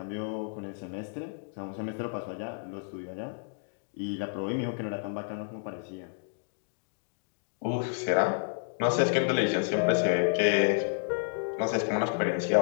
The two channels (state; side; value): silent; right; digital silence